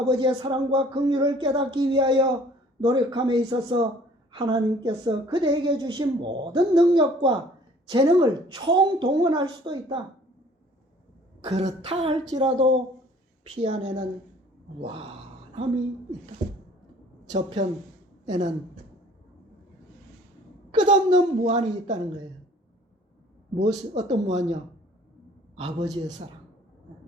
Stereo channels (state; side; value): normal; both; correlation 0.54